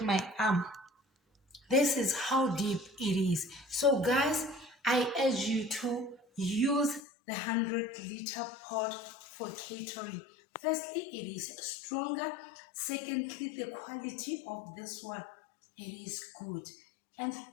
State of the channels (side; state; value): right; drops out; at 7.0 s